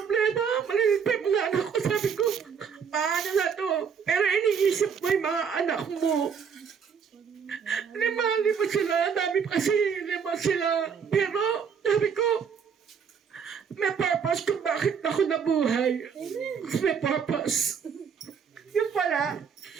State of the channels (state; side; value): quieter; left; 6.8 dB